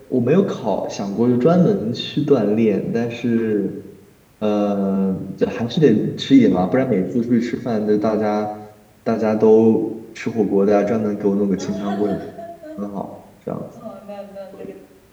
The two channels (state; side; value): identical; both; correlation 1.00